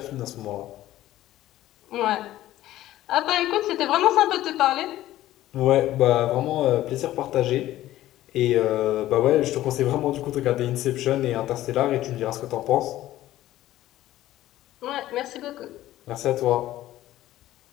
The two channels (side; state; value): right; quieter; 14.6 dB